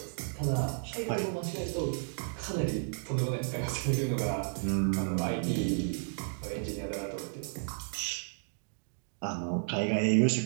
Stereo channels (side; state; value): left; silent; digital silence